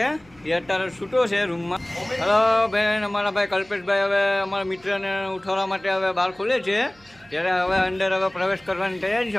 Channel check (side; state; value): right; noise; hum, 29 dB below the sound